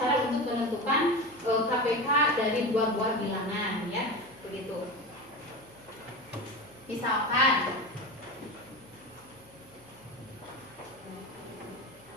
untuk menentukan KPK dari dua buah bilangan ya, begitu. Misalkan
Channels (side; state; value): left; noise; hum, 29 dB below the sound